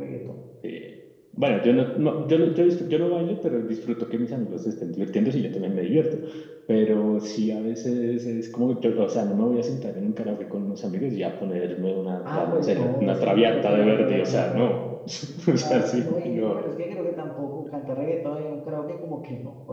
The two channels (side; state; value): both; identical; correlation 1.00